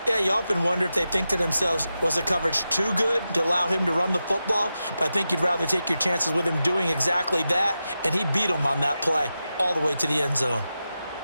Yeah, you often wonder if they think to themselves, was the coverage too good to allow him to run the football? But I think you'd rather take your chances with him doing exactly that, and he beat him on that play all the way to the end zone.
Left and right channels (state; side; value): inverted; both; correlation -0.91